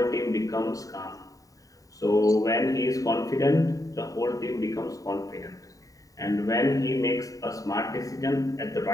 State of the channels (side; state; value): right; late; 0.16 ms